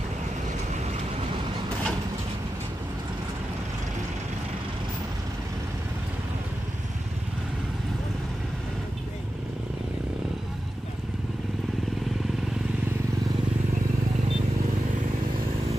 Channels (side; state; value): both; normal; correlation 0.92